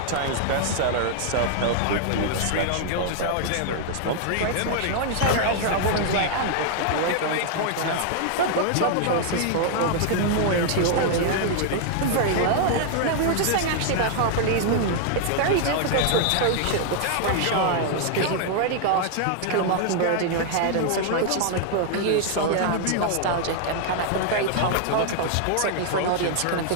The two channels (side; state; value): both; different; correlation -0.01